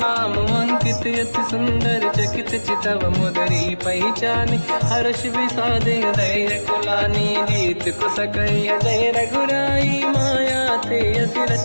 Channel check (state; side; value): inverted; both; correlation -1.00